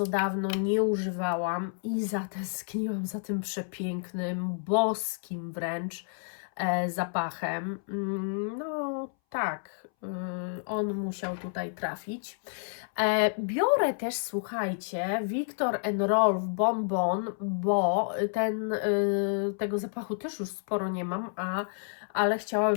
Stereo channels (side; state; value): right; silent; 58 dB below the other